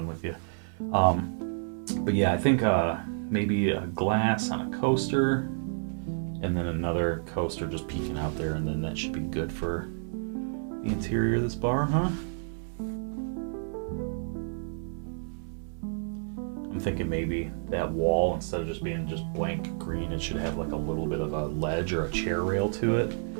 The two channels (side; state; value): left; silent; 58 dB below the other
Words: with you. But yeah, I think maybe a glass on a coaster, and then another coaster just peeking out there, and then that should be good for the interior of this bar, huh? I'm thinking maybe that wall, instead of just being just blank green, it should have like a little bit of a ledge or a chair rail to it.